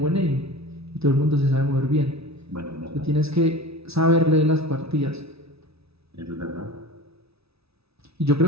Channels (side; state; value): left; late; 0.78 ms